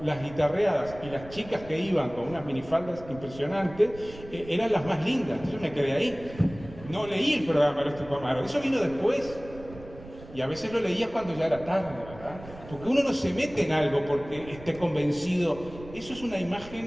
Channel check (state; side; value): noise; right; rumble, 17 dB below the sound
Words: las guitarreadas y las chicas que iban con unas minifaldas impresionantes eran las más lindas. Yo me quedé ahí. No leí el programa de Tupamaro. Eso vino después. Y a veces lo leía cuando ya era tarde, ¿verdad? Porque uno no se mete en algo porque esté convencido. Eso es una